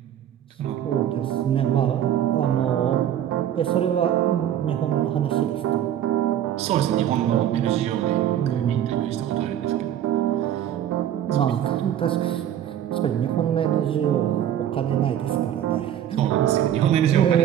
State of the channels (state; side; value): quieter; left; 10.7 dB